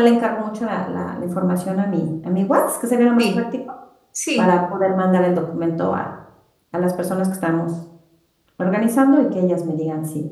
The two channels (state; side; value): identical; both; correlation 1.00